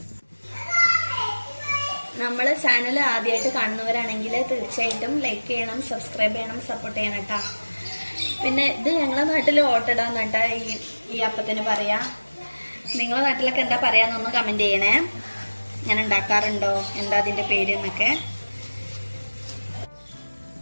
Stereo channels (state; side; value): inverted; both; correlation -1.00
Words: നമ്മള് ചാനൽ ആദ്യമായിട്ട് കാണുന്നവരാണെങ്കിൽ തീർച്ചയായിട്ടും ലൈക്ക് ചെയ്യണം, സബ്സ്ക്രൈബ് ചെയ്യണം, സപ്പോർട്ട് ചെയ്യണം കേട്ടോ. പിന്നെ ഇത് ഞങ്ങളെ നാട്ടിൽ ഓട്ടടാന്ന് കേട്ടോ ഈ അപ്പത്തിന് പറയാ. നിങ്ങളെ നാട്ടിലൊക്കെ എന്താ പറയാന്നൊന്ന് കമന്റ് ചെയ്യണേ. ഞാൻ ഉണ്ടാക്കാറുണ്ടോ, എന്താ അതിന്റെ പേര് എന്നൊക്കെ.